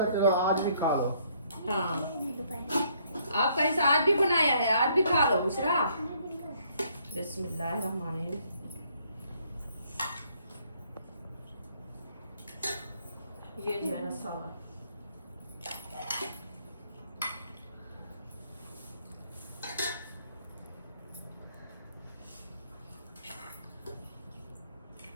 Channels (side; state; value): both; inverted; correlation -0.67